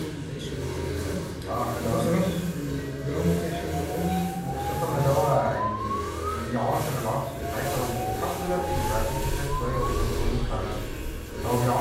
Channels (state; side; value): identical; both; correlation 1.00